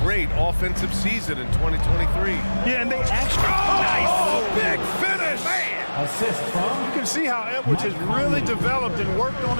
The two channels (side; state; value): both; inverted; correlation -1.00